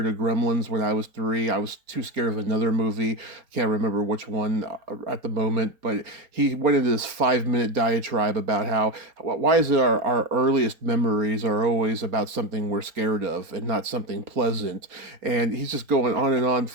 of Gremlins when I was 3. I was too scared of another movie. I can't remember which one at the moment, but he went into this 5-minute diatribe about why is it our earliest memories are always about something we're scared of and not something pleasant. And he's just going on and on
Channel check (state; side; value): late; left; 4.4 ms